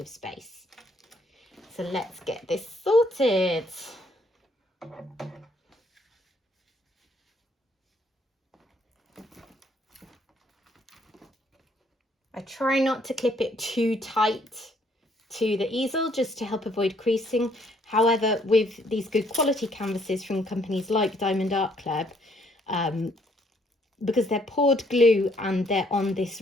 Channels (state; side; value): normal; both; correlation 0.67